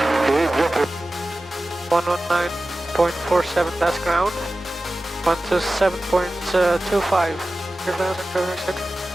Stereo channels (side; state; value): both; normal; correlation 0.95